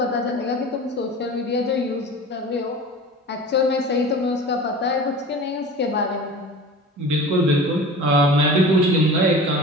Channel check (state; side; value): normal; both; correlation 0.37